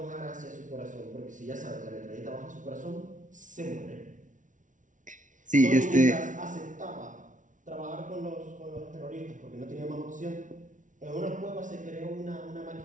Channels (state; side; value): late; left; 0.37 ms